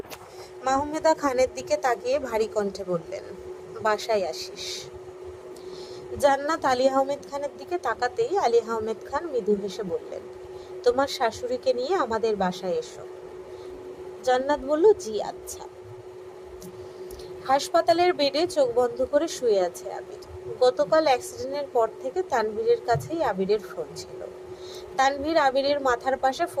মাহমুদা খানের দিকে তাকিয়ে ভারী কণ্ঠে বললেন, বাসায় আসিস। জান্নাত আলী আহমেদ খানের দিকে তাকাতেই আলী আহমেদ খান মৃদু হেসে বললেন, তোমার শাশুড়িকে নিয়ে আমাদের বাসায় এসো। জান্নাত বলল, জি আচ্ছা। হাসপাতালের বেডে চোখ বন্ধ করে শুয়ে আছে আবির। গতকাল অ্যাক্সিডেন্টের পর থেকে তানভীরের কাছেই আবিরের ফোন ছিল। তানভীর আবিরের মাথার পাশে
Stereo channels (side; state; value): both; identical; correlation 1.00